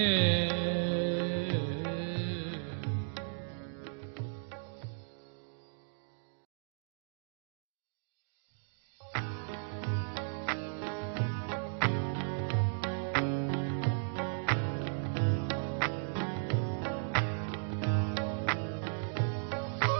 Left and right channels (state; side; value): silent; left; digital silence